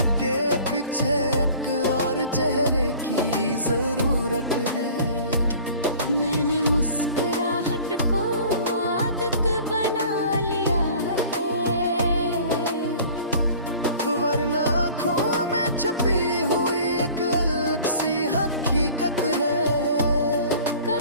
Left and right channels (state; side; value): inverted; both; correlation -0.46